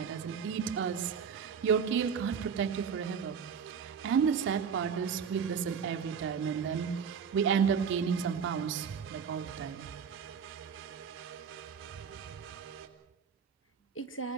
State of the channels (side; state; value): left; quieter; 6.7 dB